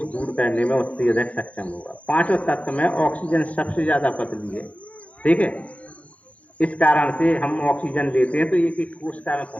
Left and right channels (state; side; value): late; right; 0.065 ms